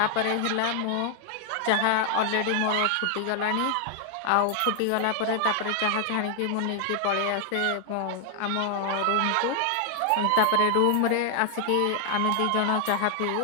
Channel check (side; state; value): both; different; correlation 0.00